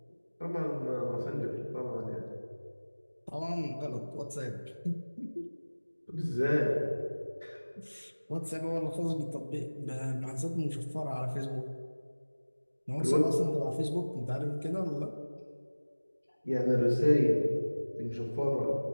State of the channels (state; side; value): inverted; both; correlation -1.00